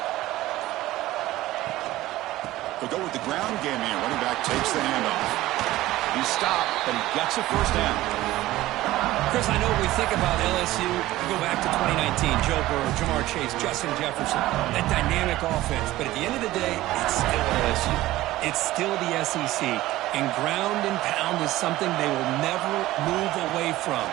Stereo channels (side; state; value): left; quieter; 16.5 dB